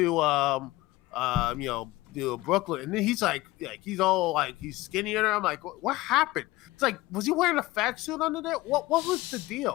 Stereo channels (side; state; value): right; quieter; 19.0 dB